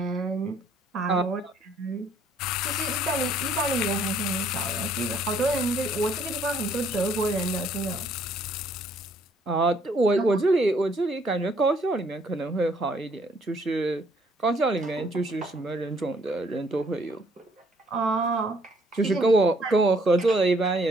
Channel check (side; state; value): both; normal; correlation 0.64